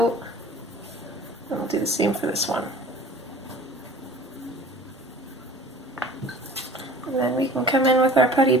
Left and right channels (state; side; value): normal; both; correlation 0.45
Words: And we'll do the same for this one. And then we can come in with our putty